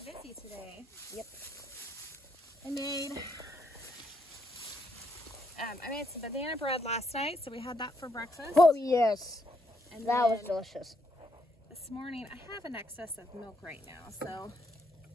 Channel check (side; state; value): both; normal; correlation 0.75